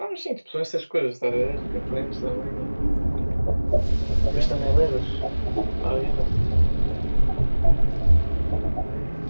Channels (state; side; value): inverted; both; correlation -1.00